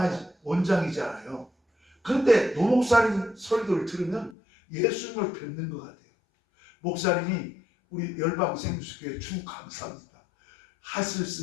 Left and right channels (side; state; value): right; drops out; at 4.4 s